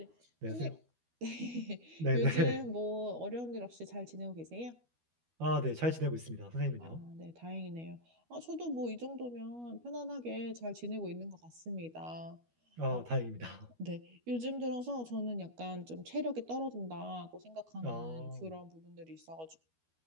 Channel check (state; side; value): late; left; 12 ms